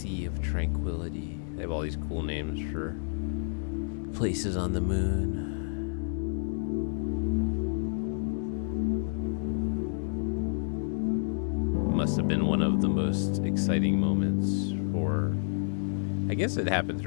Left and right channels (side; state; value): right; silent; 58 dB below the other